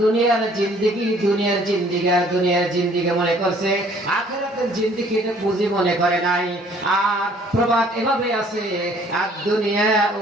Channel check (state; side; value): normal; both; correlation 0.58